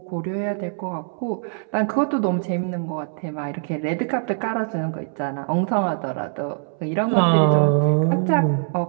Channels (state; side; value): silent; left; 64 dB below the other